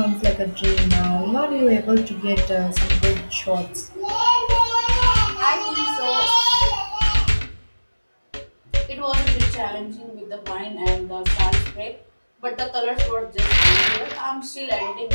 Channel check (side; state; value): both; inverted; correlation -1.00